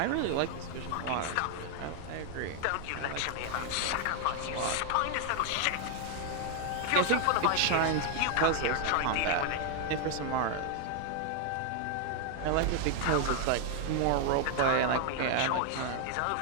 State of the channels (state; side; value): different; both; correlation 0.00